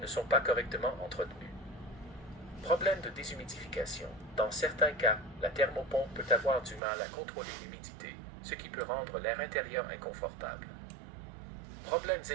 sont pas correctement entretenues. Problème de déshumidification. Dans certains cas, la thermopompe peut avoir du mal à contrôler l'humidité, ce qui peut rendre l'air intérieur inconfortable. Problèmes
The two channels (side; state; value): left; drops out; at 6.8 s